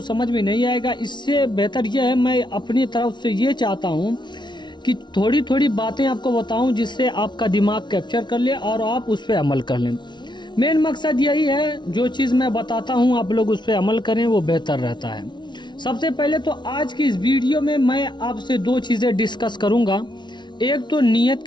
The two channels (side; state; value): right; late; 0.22 ms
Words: समझ में नहीं आएगा। इससे बेहतर यह है मैं अपनी तरफ से ये चाहता हूँ कि थोड़ी थोड़ी बातें आपको बताऊं जिससे आपका दिमाग कैप्चर कर ले और आप उस पर अमल कर लें। मेन मकसद यही है, जो चीज़ मैं बताता हूँ आप लोग उस पर अमल करें, वो बेहतर रहता है। सबसे पहले तो आज की इस वीडियो में मैं आपसे 2 चीज़ें डिस्कस करूँगा। एक तो नियत